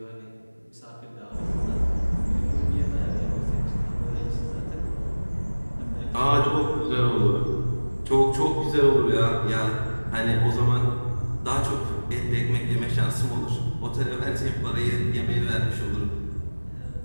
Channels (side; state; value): both; inverted; correlation -1.00